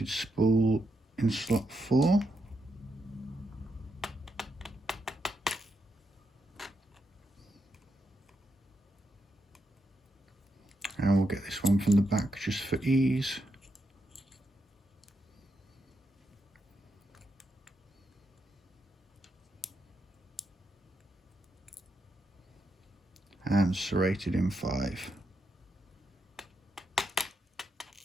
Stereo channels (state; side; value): normal; both; correlation 0.82